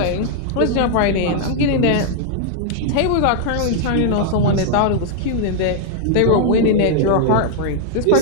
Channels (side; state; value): both; different; correlation -0.01